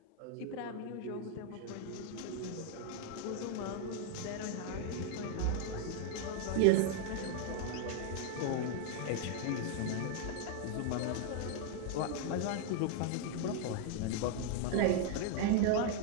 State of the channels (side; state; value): both; different; correlation 0.00